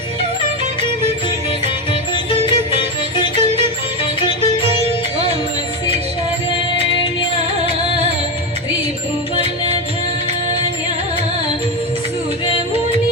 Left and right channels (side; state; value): both; normal; correlation 0.13